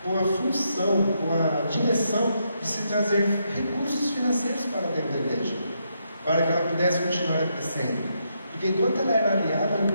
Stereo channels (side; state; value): both; inverted; correlation -0.79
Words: a função, com a direção de se trazer recursos financeiros para dentro da igreja, para que ela pudesse continuar crescendo. Porque enquanto ela era aliada ao